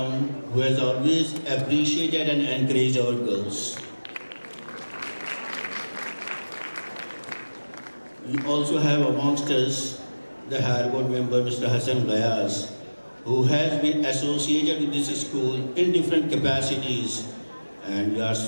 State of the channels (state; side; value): inverted; both; correlation -1.00